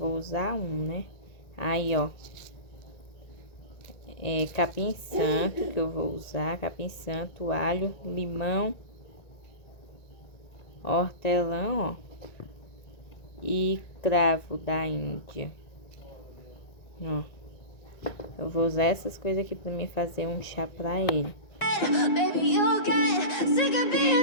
usar um, né? Aí, ó, capim santo que eu vou usar, capim santo, alho, limão, hortelã, ó, e cravo da Índia, ó. Eu vou usar essas coisas aqui pra mim fazer um chá pra ele. Baby, you'll get sick of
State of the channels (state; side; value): late; right; 1.9 ms